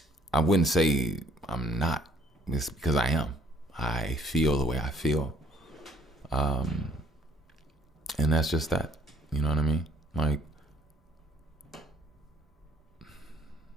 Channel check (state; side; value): normal; both; correlation 0.62